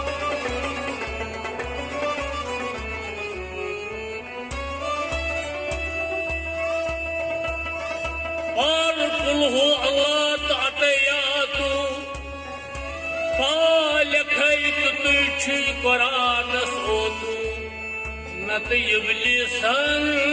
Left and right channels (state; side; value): identical; both; correlation 1.00